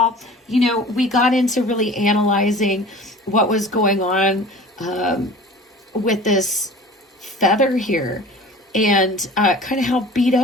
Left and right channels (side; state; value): both; normal; correlation 0.42